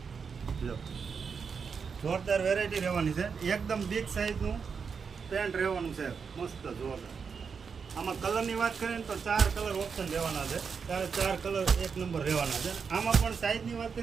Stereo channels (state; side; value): quieter; left; 5.9 dB